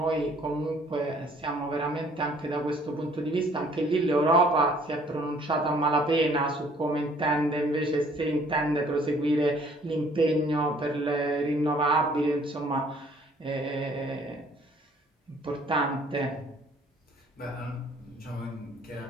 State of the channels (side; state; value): both; normal; correlation 0.59